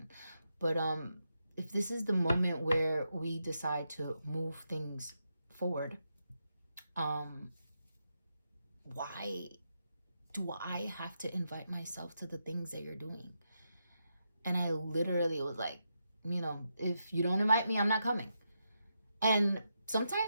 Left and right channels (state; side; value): inverted; both; correlation -0.84